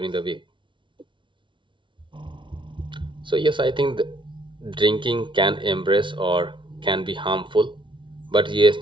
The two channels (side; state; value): left; late; 0.24 ms